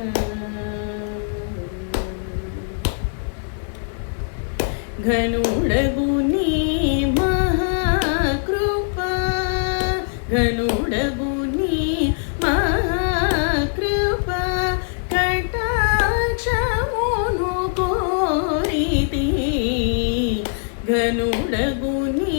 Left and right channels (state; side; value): silent; right; digital silence